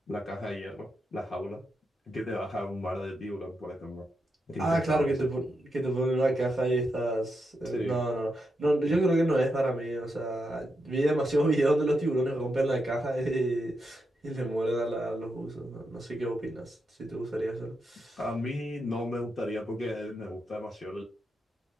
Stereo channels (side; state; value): both; normal; correlation 0.85